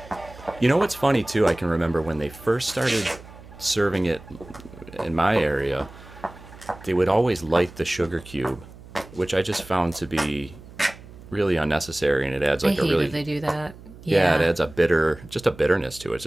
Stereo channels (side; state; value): right; noise; hum, 19 dB below the sound